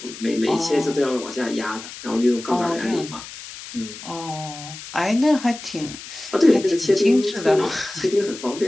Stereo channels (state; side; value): noise; left; hiss, 13 dB below the sound